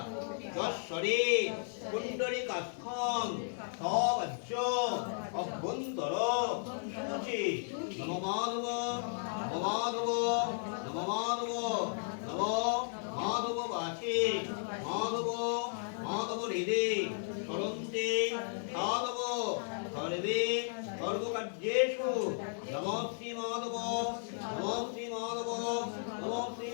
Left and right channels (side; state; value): right; silent; digital silence